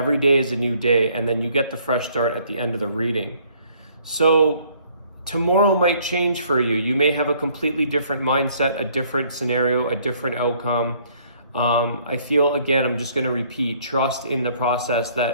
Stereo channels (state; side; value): inverted; both; correlation -0.62